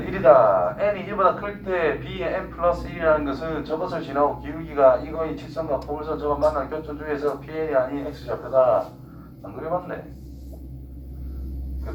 1이다. n이 1보다 클 때 b의 n 플러스 1이라는 것은 저것을 지나고 기울기가 이거의 직선과 포물선 저것 만난 교점 중에서 pn이 아닌 x좌표다. 안 그려봤네.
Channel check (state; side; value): identical; both; correlation 1.00